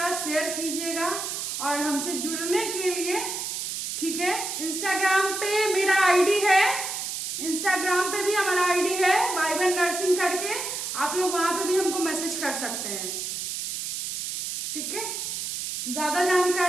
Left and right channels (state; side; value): noise; right; hiss, 4 dB below the sound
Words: शेयर कीजिएगा और हमसे जुड़ने के लिए, ठीक है, इंस्टाग्राम पे मेरा आईडी है, इंस्टाग्राम पे भी हमारा आईडी है वाइबन नर्सिंग करके, आप लोग वहां पे भी हमको मैसेज कर सकते हैं, ठीक है। ज्यादा